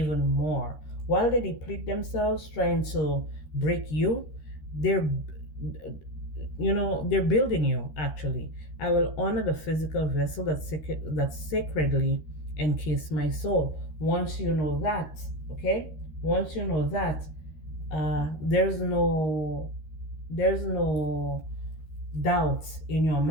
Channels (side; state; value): right; late; 13 ms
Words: more. While they deplete themselves trying to break you, they're they're building you actually. I will honor the physical vessel that sacredly encase my soul. Once you know that, okay, once you know that, there's no doubt in your